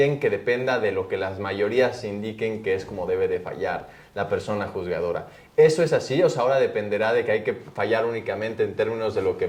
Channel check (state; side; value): identical; both; correlation 1.00